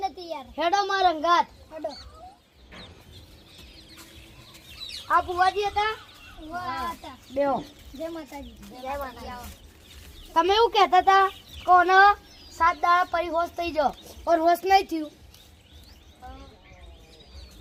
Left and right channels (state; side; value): identical; both; correlation 1.00